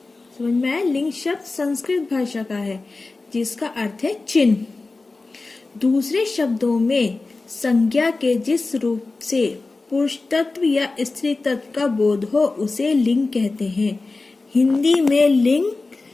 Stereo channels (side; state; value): right; quieter; 3.5 dB